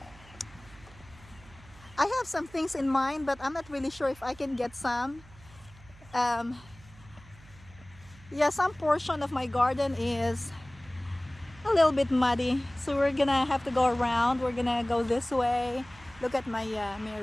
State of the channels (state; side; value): noise; right; hum, 23 dB below the sound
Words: I have some things in mind, but I'm not really sure if I can get some. Yeah, some portion of my garden is a little bit muddy, so we're gonna have to go around. We're gonna go this way. Look at my